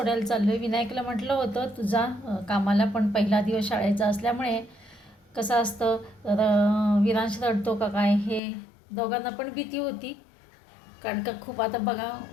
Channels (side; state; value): right; drops out; at 8.4 s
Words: चाललो आहे. विनायकला म्हटलं होतं तुझा कामाला, पण पहिला दिवस शाळेचा असल्यामुळे कसं असतं, विरांश रडतो का काय हे दोघांना पण भीती होती. कारण का खूप आता बघा